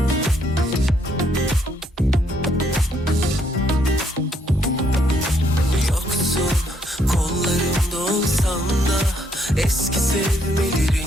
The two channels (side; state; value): both; normal; correlation 0.71